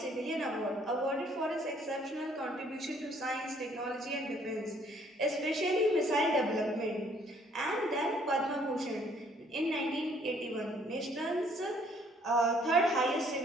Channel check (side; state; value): both; normal; correlation 0.63